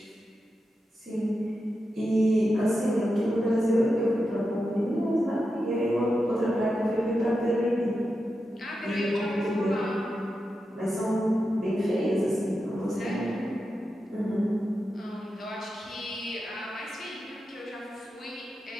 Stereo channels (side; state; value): both; normal; correlation 0.89